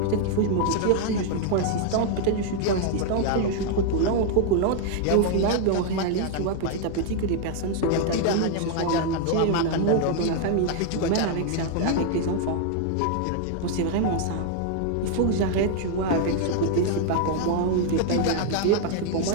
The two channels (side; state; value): both; different; correlation 0.00